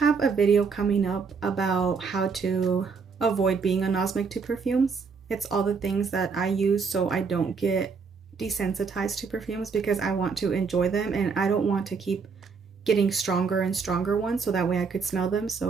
a video coming up about how to avoid being anosmic to perfumes. It's all the things that I use so I don't get desensitized to perfumes, because I want to enjoy them and I don't want to keep getting stronger and stronger ones so that way I could smell them.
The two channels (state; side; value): quieter; left; 5.3 dB